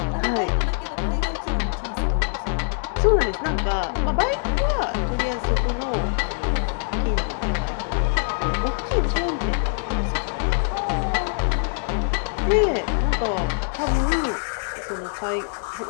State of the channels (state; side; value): silent; right; digital silence